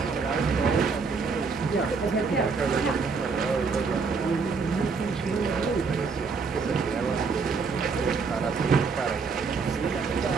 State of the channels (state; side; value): quieter; left; 4.9 dB